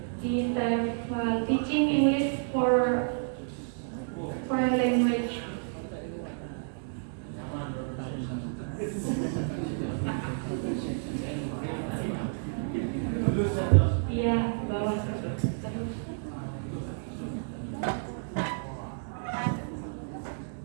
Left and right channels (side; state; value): left; silent; digital silence